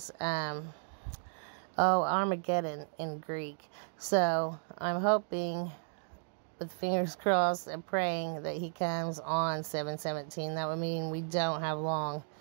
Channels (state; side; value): silent; left; digital silence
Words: Armageddon in Greek. So I'm hoping, with fingers crossed and praying, that he comes on 7/17. That would mean we don't have long